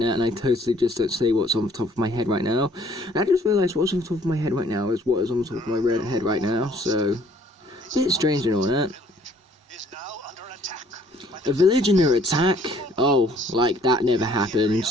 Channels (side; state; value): both; normal; correlation 0.59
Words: and I totally just don't say what's on the top of my head right now. And I just realised what's on the top of my head right now is what is on the top of my red head right now, so... a bit strange and all that. A village under attack? Oh, like that never